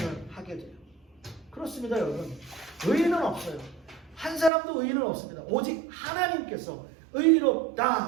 하게 돼요. 그렇습니다, 여러분. 의인은 없어요. 한 사람도 의인은 없습니다. 오직 하나님께서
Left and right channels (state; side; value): drops out; left; at 4.5 s